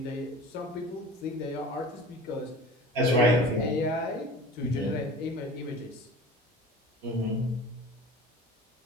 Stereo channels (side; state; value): both; normal; correlation 0.39